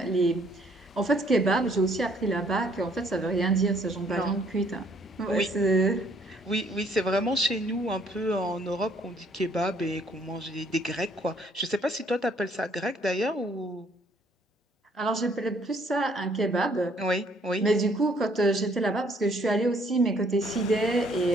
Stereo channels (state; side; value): normal; both; correlation 0.64